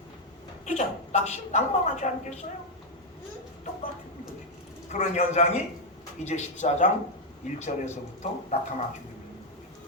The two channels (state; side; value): normal; both; correlation 0.01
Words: 그죠? 낭망하지 않겠어요? 똑같은 거죠. 그런 현상이 이제 14장 1절에서부터 나타나게 됩니다.